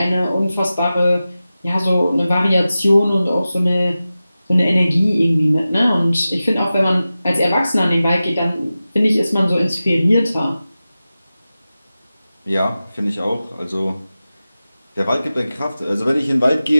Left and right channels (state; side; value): inverted; both; correlation -0.95